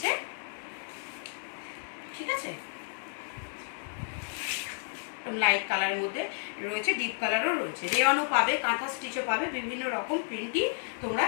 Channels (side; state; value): right; silent; 57 dB below the other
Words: ঠিক আছে, লাইট কালারের মধ্যে রয়েছে, ডিপ কালারও রয়েছে, রেওয়ানও পাবে, কাঁথা স্টিচও পাবে, বিভিন্ন রকম প্রিন্টই তোমরা